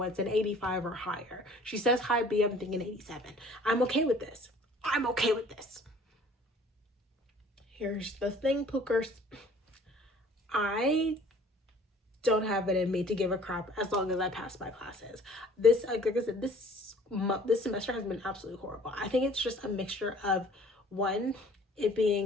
an 85 or higher. She says high B. I'm thinking 87. I'm okay with this. I'm okay with this. Here's the thing, Pookers. I don't have it in me to give a crap as long as I pass my classes. This, like I said, this semester has been absolutely horrible. I think it's just a mixture of, one, it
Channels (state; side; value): normal; both; correlation 0.53